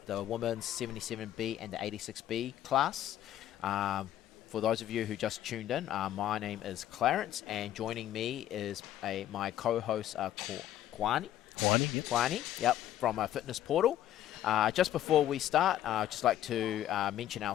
the women's 77B and the 86B class. For those of you who just tuned in, my name is Clarence, and joining me is my co-host, Kwani. Yep. Kwani, yep, from Fitness Portal. Just before we start, I'd just like to mention our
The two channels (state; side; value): quieter; right; 12.1 dB